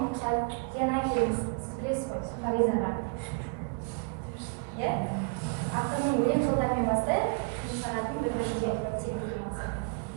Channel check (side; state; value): left; quieter; 35.0 dB